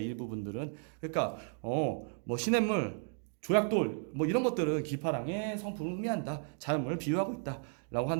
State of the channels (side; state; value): left; silent; 55 dB below the other